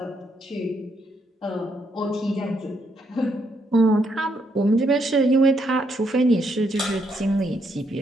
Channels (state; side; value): normal; both; correlation 0.75